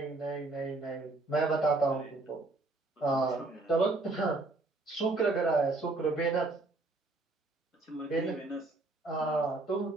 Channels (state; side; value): quieter; left; 3.2 dB